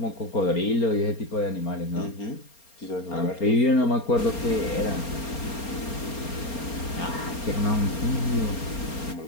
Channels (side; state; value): right; late; 4.3 ms